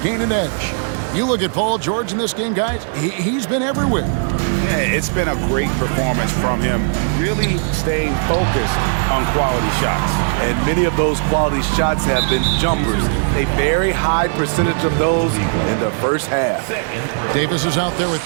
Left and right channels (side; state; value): left; silent; digital silence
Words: gain an edge. You look at Paul George in this game, guys, he's been everywhere. Yeah, it's been a great performance from him, really staying focused on quality shots. And many of those quality shots have been jumpers. A very high percentage of those in the 1st half. Davis is out there with